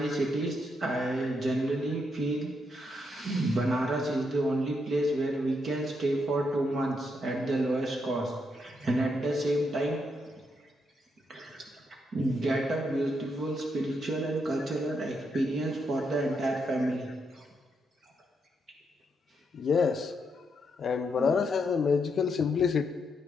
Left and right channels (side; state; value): both; normal; correlation 0.79